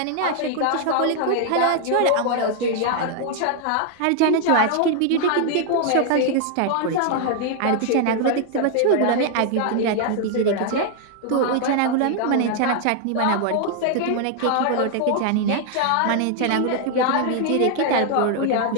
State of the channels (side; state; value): both; different; correlation 0.00